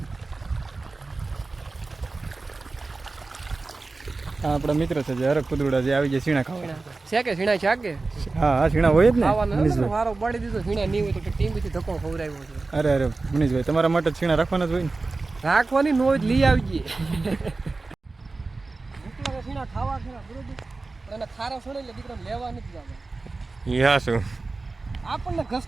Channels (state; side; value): quieter; left; 3.6 dB